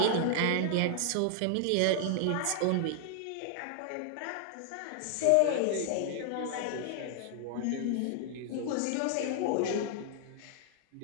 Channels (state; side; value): different; both; correlation 0.00